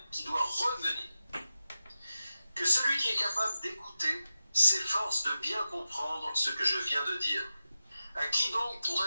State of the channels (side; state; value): both; inverted; correlation -0.92